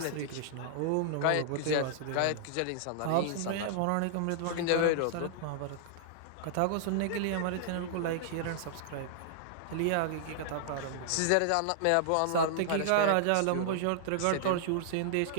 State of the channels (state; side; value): different; both; correlation -0.01